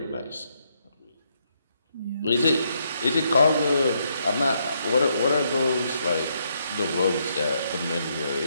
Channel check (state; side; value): inverted; both; correlation -0.76